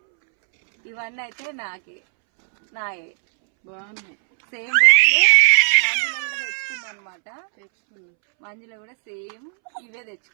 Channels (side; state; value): left; silent; 66 dB below the other